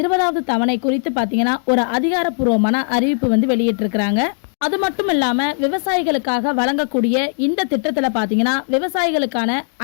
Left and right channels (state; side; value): silent; right; digital silence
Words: தவணை குறித்து பார்த்தீங்கன்னா ஒரு அதிகாரப்பூர்வமான அறிவிப்பு வந்து வெளியிட்டிருக்கிறாங்க. அது மட்டும் இல்லாமல் விவசாயிகளுக்காக வழங்கக்கூடிய இந்த திட்டத்தில் பார்த்தீங்கன்னா விவசாயிகளுக்கான